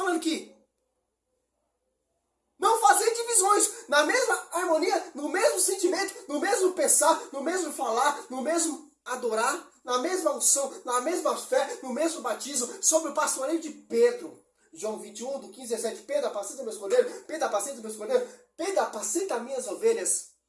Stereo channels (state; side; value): identical; both; correlation 1.00